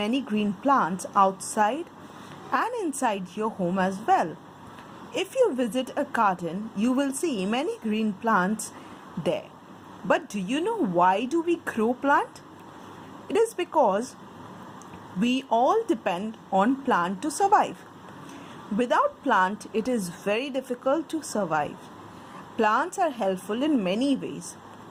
green plants outside and inside your home as well. If you visit a garden, you will see many green plants there. But do you know why do we grow plant? It is because we all depend on plant to survive. Without plant, it is very difficult to survive. Plants are helpful in many ways.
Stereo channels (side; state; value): both; identical; correlation 1.00